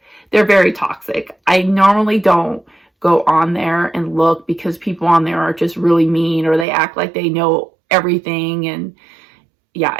they're very toxic. I normally don't go on there and look because people on there are just really mean, or they act like they know everything. And yeah,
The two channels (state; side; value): drops out; left; at 6.7 s